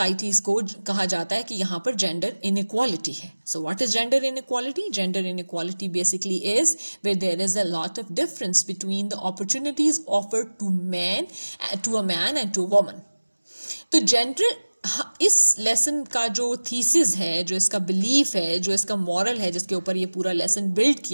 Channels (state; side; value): inverted; both; correlation -1.00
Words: کو کہا جاتا ہے کہ یہاں پر جینڈر انیکوالٹی ہے. So what is gender inequality? Gender inequality basically is where there is a lot of difference between the opportunities offered to a man and to a woman. تو جینڈر، اس lesson کا جو thesis ہے، جو اس کا belief ہے، جو اس کا مورل ہے، جس کے اوپر یہ پورا لیسن بلڈ